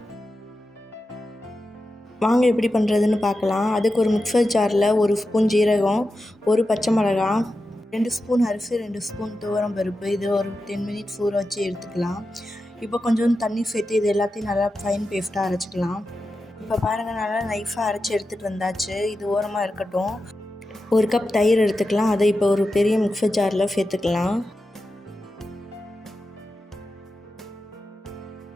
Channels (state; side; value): normal; both; correlation 0.91